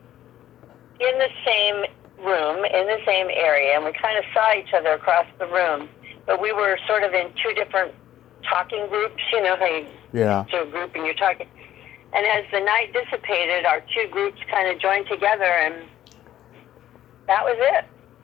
in the same room, in the same area, and we kind of saw each other across the room, but we were sort of in two different talking groups, how you to a group and you're talking. And as the night dissipated, our two groups kind of joined together, and that was it.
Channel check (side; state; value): right; quieter; 12.3 dB